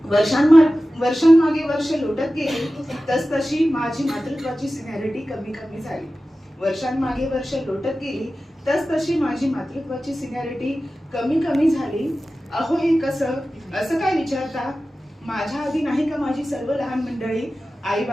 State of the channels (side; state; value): both; normal; correlation 0.95